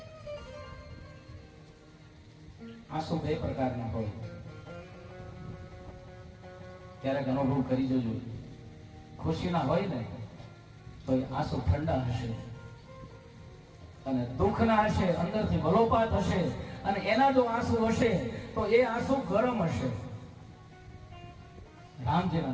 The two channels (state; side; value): identical; both; correlation 1.00